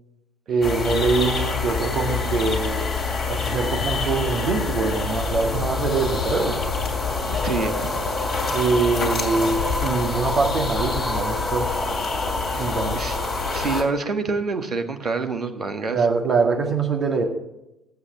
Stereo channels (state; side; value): normal; both; correlation 0.64